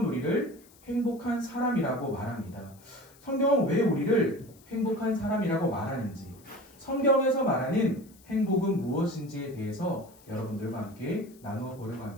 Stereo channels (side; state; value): left; noise; hiss, 26 dB below the sound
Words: 우리를 행복한 사람이라고 말합니다. 성경은 왜 우리를 행복한 사람이라고 말하는지, 성경에서 말하는 행복은 무엇인지에 대해서 여러분들과 함께 나누어 보려고